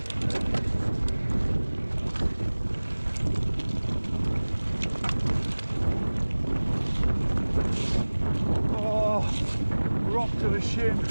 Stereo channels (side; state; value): both; inverted; correlation -1.00